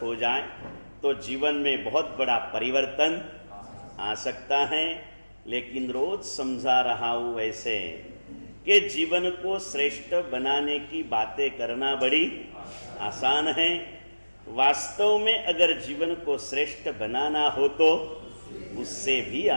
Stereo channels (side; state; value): both; inverted; correlation -1.00